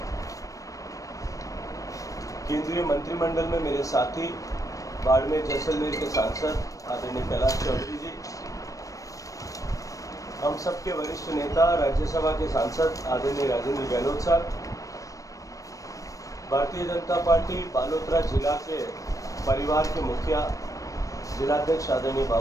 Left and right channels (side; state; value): right; late; 0.16 ms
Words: केंद्रीय मंत्रिमंडल में मेरे साथी बाड़मेर जैसलमेर के सांसद आदरणीय कैलाश चौधरी जी, हम सबके वरिष्ठ नेता राज्यसभा के सांसद आदरणीय राजेंद्र गहलोत साहब, भारतीय जनता पार्टी बालोतरा जिला के परिवार के मुखिया जिलाध्यक्ष आदरणीय